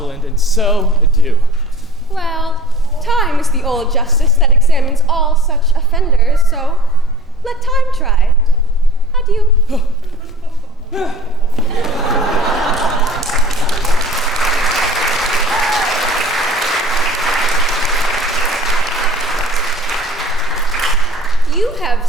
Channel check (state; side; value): normal; both; correlation 0.44